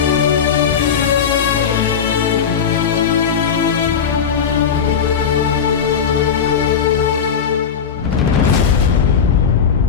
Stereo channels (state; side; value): quieter; right; 7.2 dB